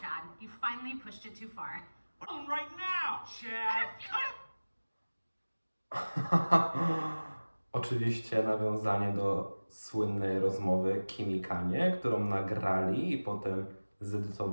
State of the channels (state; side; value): inverted; both; correlation -1.00